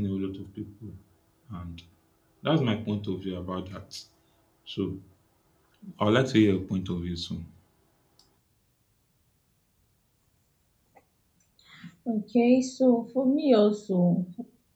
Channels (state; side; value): identical; both; correlation 1.00